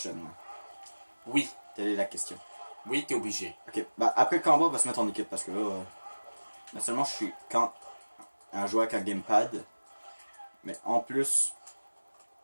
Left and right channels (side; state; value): both; inverted; correlation -1.00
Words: Oui, Telle est la question. oui, t'es obligé. Ok, bah après le combat, on va se mettre en équipe parce que là, non seulement je suis un joueur avec un gamepad, mais en plus,